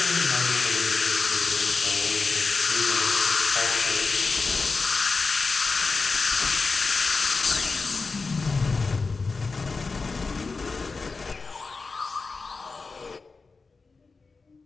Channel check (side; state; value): right; quieter; 4.2 dB